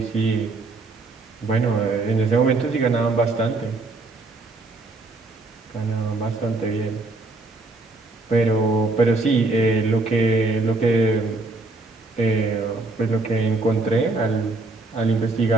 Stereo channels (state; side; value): quieter; left; 3.4 dB